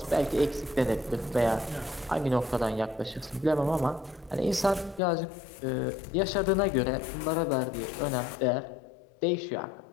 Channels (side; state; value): right; drops out; at 5.0 s